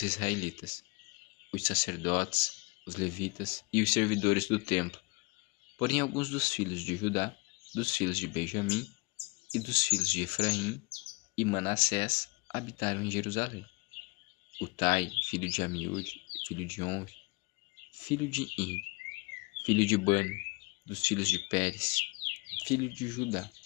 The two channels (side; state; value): right; quieter; 28.2 dB